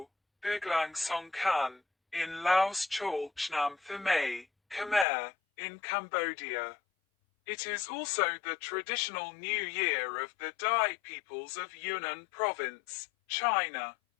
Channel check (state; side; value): drops out; right; at 5.1 s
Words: Biglang Songkhan, in Laos Chol Chnam Thamay, Khmer, in Cambodia. It is also the traditional New Year of the Dai peoples of Yunnan Province, China.